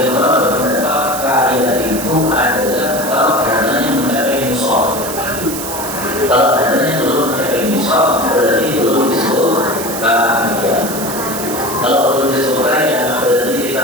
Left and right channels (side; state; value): right; noise; hiss, 7 dB below the sound